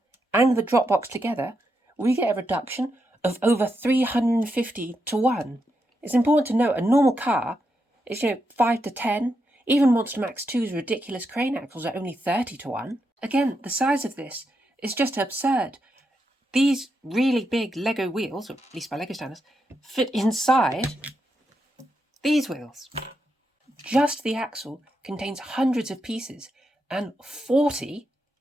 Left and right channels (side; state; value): both; normal; correlation 0.84